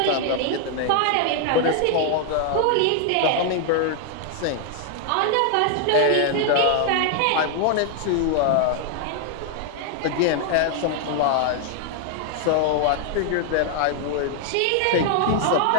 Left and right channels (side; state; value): both; different; correlation 0.00